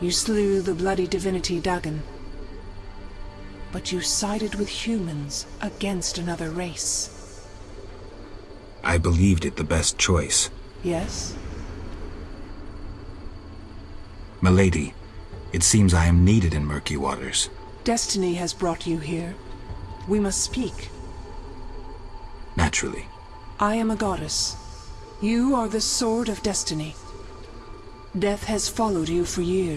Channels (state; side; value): identical; both; correlation 1.00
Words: slew the bloody divinity Dagon. But you sided with humans against another race. I believed it the best choice. Yes? Milady, it seems I am needed in murky waters. Destiny has brought you here. We must speak. Naturally. I am a goddess. You are the sword of destiny. Death has followed you for